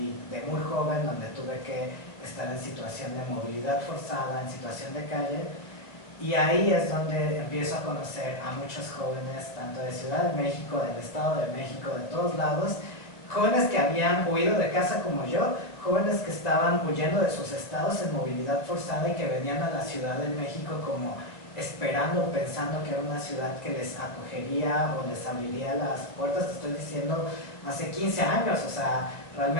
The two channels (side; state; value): right; late; 2.1 ms